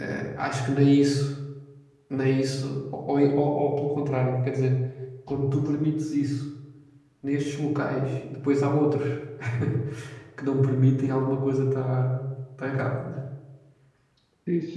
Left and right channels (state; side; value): identical; both; correlation 1.00